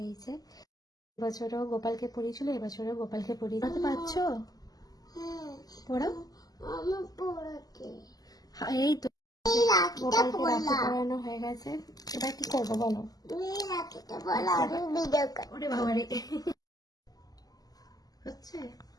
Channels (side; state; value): right; late; 0.18 ms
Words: এই যে এবছরও গোপালকে পরিয়েছিল, এবছরও গোপালকে পরিয়ে দিতে পারছো? পড়াও। এই তো গোপালকে রাখি পরানো হয়ে গেছে, এবার কি করবো বলো? ওরে বাবারে, হচ্ছে